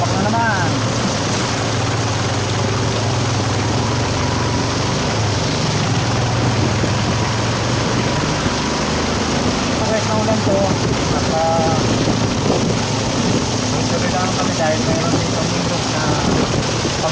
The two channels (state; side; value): identical; both; correlation 1.00